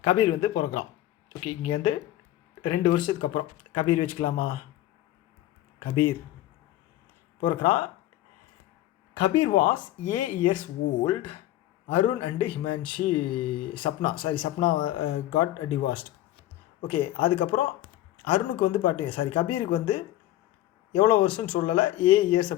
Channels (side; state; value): right; quieter; 14.6 dB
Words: Kabir வந்து பிறக்கிறான். ஓகே, இங்கே வந்து 2 வருஷத்துக்கு அப்புறம் கபீர் வச்சுக்கலாமா? கபீர் பிறக்கிறான். Kabir was 8 years old. Arun and Himanshi Sapna got divorced. Okay, அதுக்கப்புறம் அருணுக்கு வந்து கபீருக்கு வந்து எவ்வளோ வருஷம்னு சொல்லலை, 8 years